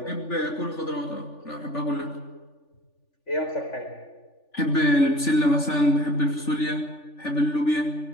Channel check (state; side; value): late; right; 3.4 ms